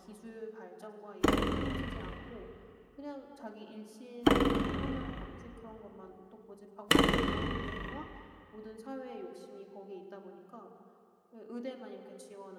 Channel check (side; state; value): both; identical; correlation 1.00